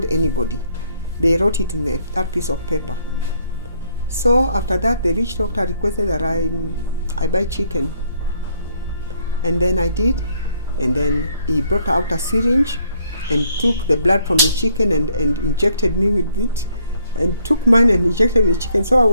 anybody. They wrote it in that piece of paper. So after that, the witch doctor requested that I buy chicken, and then I did, and then he brought out a syringe and took the blood from the chicken and injected me with it, and took mine and injected the chicken.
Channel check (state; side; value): inverted; both; correlation -0.69